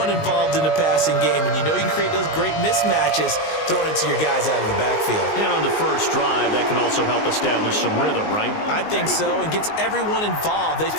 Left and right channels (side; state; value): right; late; 19 ms